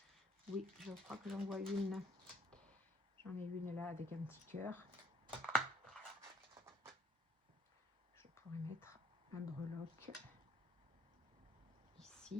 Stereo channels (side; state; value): both; normal; correlation 0.63